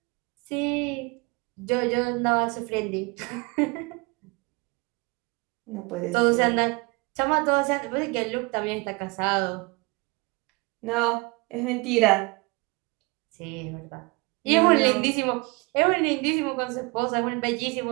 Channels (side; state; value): left; quieter; 26.8 dB